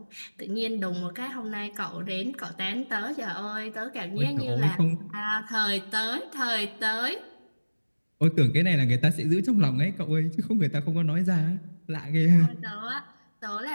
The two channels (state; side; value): inverted; both; correlation -1.00